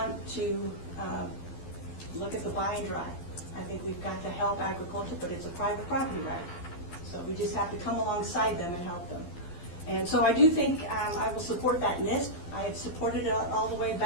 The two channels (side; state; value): right; late; 12 ms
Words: to look at the buy and dry. I think we've got to help agriculture, but it's a private property right. So we just have to come alongside them and help them. And so I do think I will support that NISP. I have supported it all the way